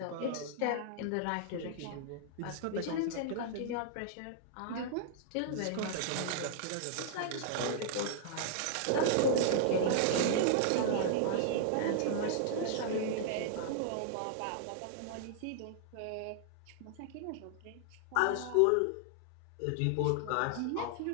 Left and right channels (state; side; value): different; both; correlation -0.01